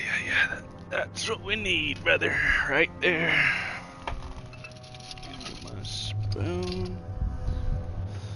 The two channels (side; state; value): both; identical; correlation 1.00